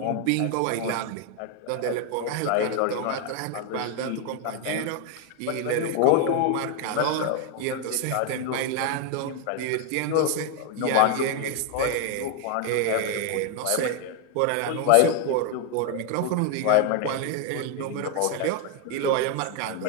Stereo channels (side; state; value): both; different; correlation 0.01